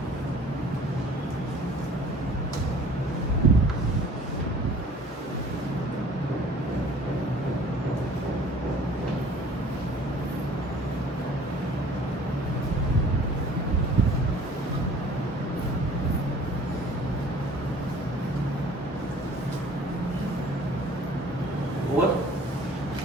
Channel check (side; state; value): both; normal; correlation 0.51